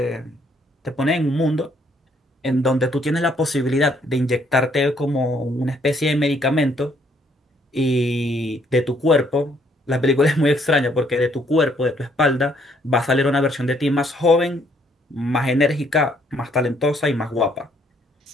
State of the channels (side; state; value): both; normal; correlation 0.67